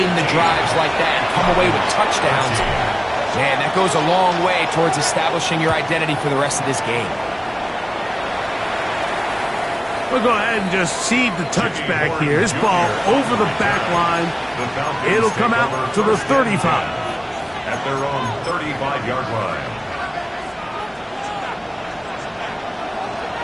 the drives like that and come away with touchdowns. Man, that goes a long way towards establishing your identity for the rest of this game. We'll go ahead and just seed the touchback here. This ball over the back line. It'll come out to the 35. At their own 35-yard line.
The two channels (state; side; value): identical; both; correlation 1.00